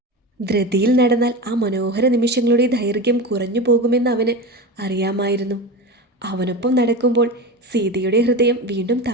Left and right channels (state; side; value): normal; both; correlation 0.24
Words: ധൃതിയിൽ നടന്നാൽ ആ മനോഹര നിമിഷങ്ങളുടെ ദൈർഘ്യം കുറഞ്ഞു പോകുമെന്ന് അവന് അറിയാമായിരുന്നു. അവനൊപ്പം നടക്കുമ്പോൾ സീതയുടെ ഹൃദയം വീണ്ടും